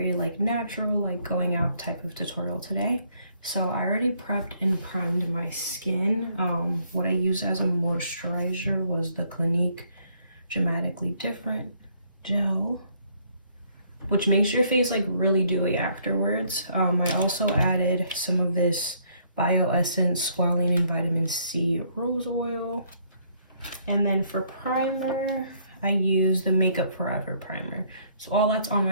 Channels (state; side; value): inverted; both; correlation -0.67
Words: natural going out type of tutorial today. So I already prepped and primed my skin. What I used as a moisturizer was the Clinique Dramatically Different gel, which makes your face really dewy afterwards. I also added some of this Bio Essence Squalene and Vitamin C Rose Oil. And then for primer, I use the Makeup Forever primer. So all that's on